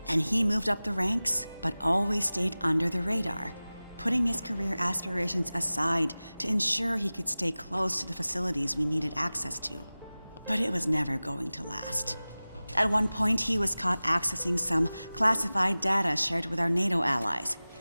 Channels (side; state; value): both; inverted; correlation -0.98